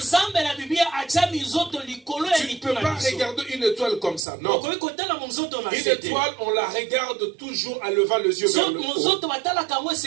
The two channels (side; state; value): left; drops out; at 4.2 s